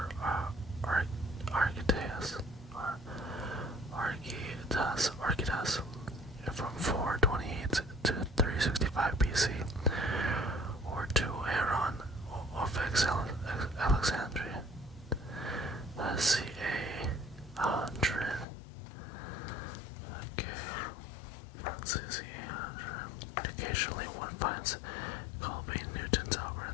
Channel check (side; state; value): right; drops out; at 18.4 s